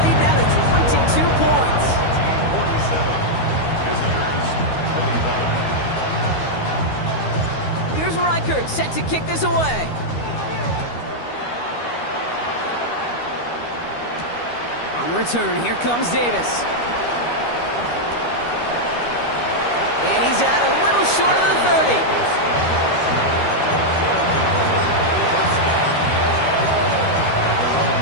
lead now to 22 points. 47, visitors 25. Here's Reichert set to kick this away. On the return, here comes Davis. And he's out a little short of the 30.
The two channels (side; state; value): right; late; 13 ms